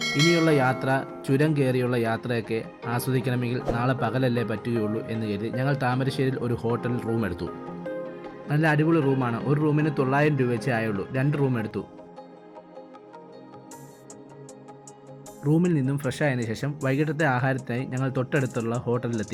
ഇനിയുള്ള യാത്ര, ചുരം കയറിയുള്ള യാത്രയൊക്കെ ആസ്വദിക്കണമെങ്കിൽ നാളെ പകലല്ലേ പറ്റുകയുള്ളൂ എന്ന് കരുതി ഞങ്ങൾ താമരശ്ശേരിയിൽ ഒരു ഹോട്ടൽ റൂം എടുത്തു. നല്ല അടിപൊളി റൂമാണ്. ഒരു റൂമിന് 900 രൂപ വെച്ചേ ആയുള്ളൂ. 2 റൂം എടുത്തു. റൂമിൽ നിന്നും ഫ്രഷ് ആയതിനു ശേഷം വൈകിട്ടത്തെ ആഹാരത്തിനായി ഞങ്ങൾ തൊട്ടടുത്തുള്ള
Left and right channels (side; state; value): both; identical; correlation 1.00